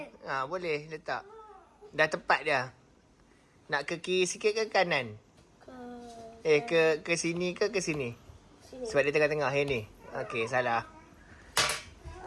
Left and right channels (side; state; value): both; identical; correlation 1.00